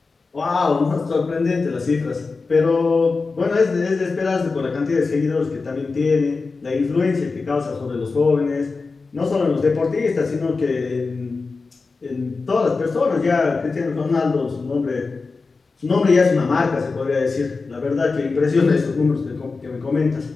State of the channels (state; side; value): quieter; right; 4.2 dB